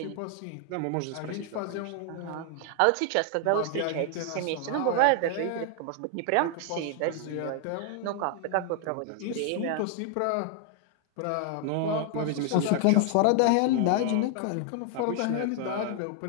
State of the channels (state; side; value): different; both; correlation 0.00